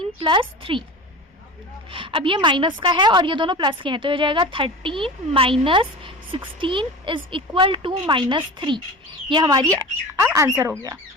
प्लस 3। अब ये माइनस का है और ये दोनों प्लस के हैं, तो ये हो जाएगा 13 minus 16 is equal to minus 3। ये हमारी आंसर हो गया।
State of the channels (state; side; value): normal; both; correlation 0.32